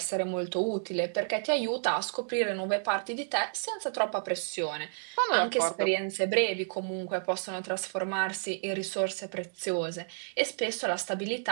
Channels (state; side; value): silent; left; digital silence